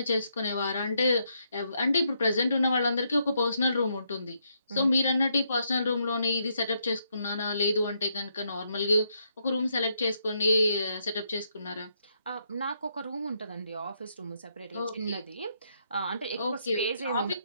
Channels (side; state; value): both; inverted; correlation -0.76